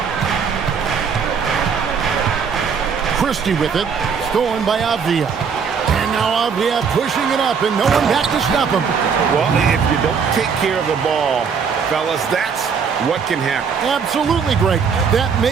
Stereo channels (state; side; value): quieter; left; 6.2 dB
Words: Christie with it. Stolen by Avdia. And now Avdia pushing it up, and no one back to stop him. Well, if you don't take care of the ball, fellas, that's what can happen. Absolutely great. That